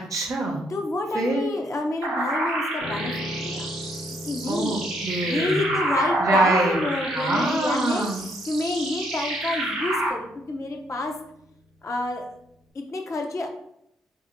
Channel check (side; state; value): both; normal; correlation 0.71